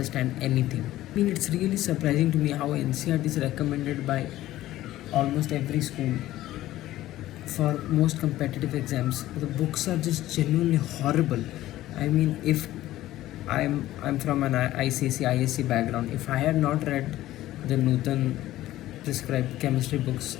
anything. I mean, it's really surprising to me how NCRT is recommended by almost every school for most competitive exams. The books are just genuinely horrible. I mean, if I'm from an ICC ISC background, if I had not read the Nutan prescribed chemistry books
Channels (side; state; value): right; quieter; 15.0 dB